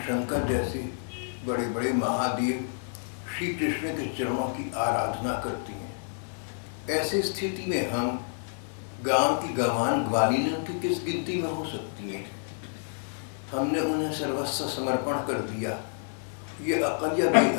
शंकर जैसे बड़े बड़े महादेव श्री कृष्ण के चरणों की आराधना करती हैं। ऐसी स्थिति में हम गांव की गंवान ग्वालिनों की किस गिनती में हो सकती हैं? हमने उन्हें सर्वस्व समर्पण कर दिया। ये अकल या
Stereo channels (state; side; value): silent; right; digital silence